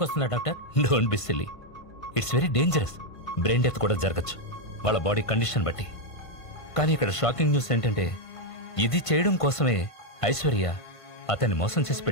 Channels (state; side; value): late; right; 1.5 ms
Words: doctor? Don't be silly. It's very dangerous. Brain death కూడా జరగచ్చు వాళ్ళ బాడీ కండిషన్ బట్టి. కానీ ఇక్కడ షాకింగ్ న్యూస్ ఏంటంటే ఇది చేయడం కోసమే ఐశ్వర్య అతన్ని మోసం చేసి